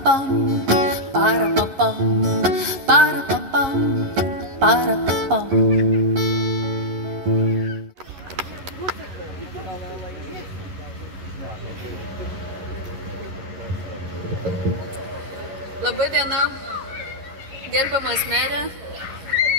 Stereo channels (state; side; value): late; left; 11 ms